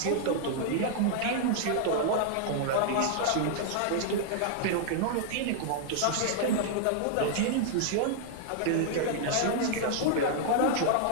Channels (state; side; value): different; both; correlation -0.01